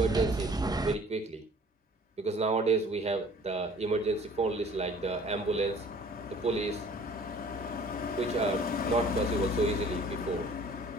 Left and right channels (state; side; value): normal; both; correlation 0.52